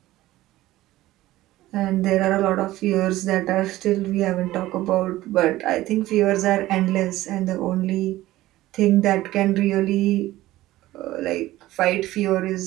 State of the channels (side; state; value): left; quieter; 16.3 dB